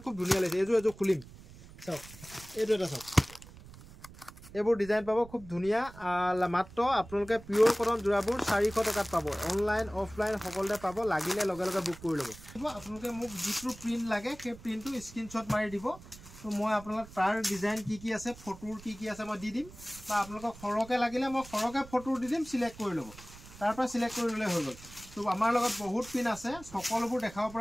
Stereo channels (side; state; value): right; noise; rumble, 18 dB below the sound